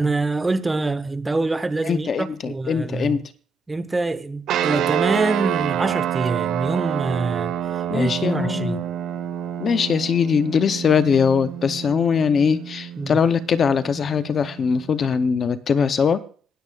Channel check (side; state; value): both; normal; correlation 0.75